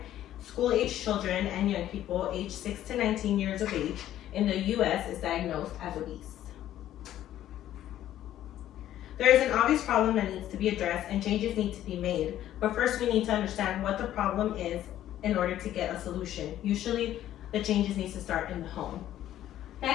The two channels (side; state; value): right; quieter; 12.4 dB